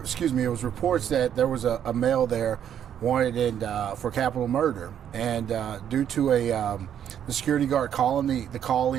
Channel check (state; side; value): quieter; left; 9.5 dB